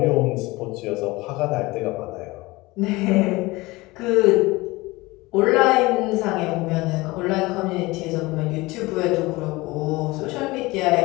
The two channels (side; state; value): right; quieter; 21.5 dB